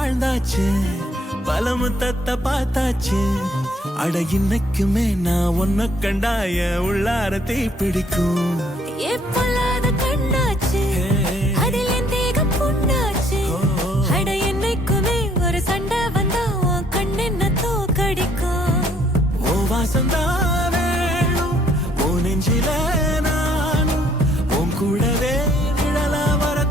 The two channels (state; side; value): normal; both; correlation 0.65